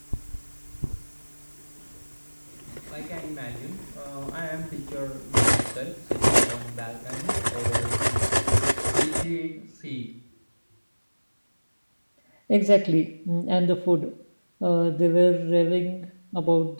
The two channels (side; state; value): both; inverted; correlation -1.00